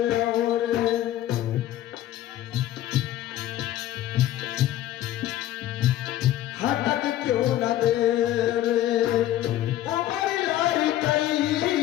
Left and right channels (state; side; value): quieter; right; 13.4 dB